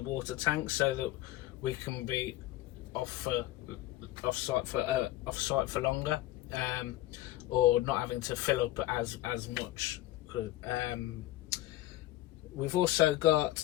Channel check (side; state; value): right; quieter; 15.8 dB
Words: tank, so that we can be off site for longer, or not having to fill up as much. We've also